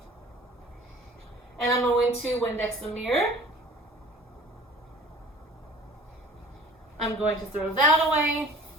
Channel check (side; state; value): both; normal; correlation 0.46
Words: and I'm going to Windex the mirror. I'm going to throw that away.